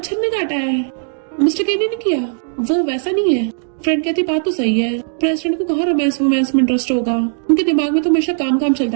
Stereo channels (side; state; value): left; silent; digital silence